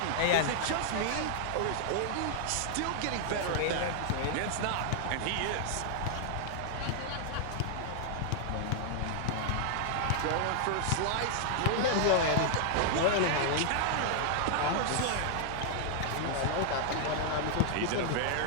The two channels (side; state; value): both; different; correlation 0.00